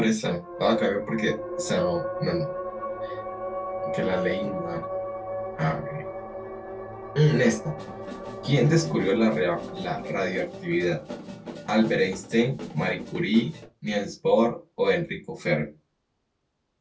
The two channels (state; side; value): identical; both; correlation 1.00